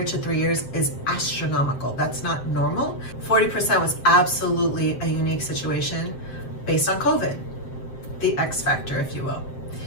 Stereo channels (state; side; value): late; right; 7.6 ms